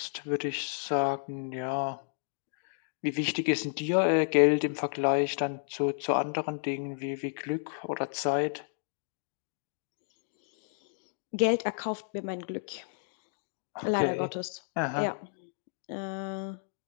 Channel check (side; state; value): right; silent; digital silence